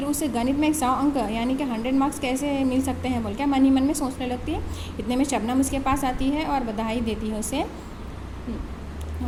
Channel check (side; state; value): both; identical; correlation 1.00